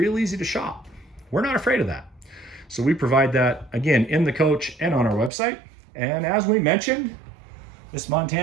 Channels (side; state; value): left; drops out; at 5.3 s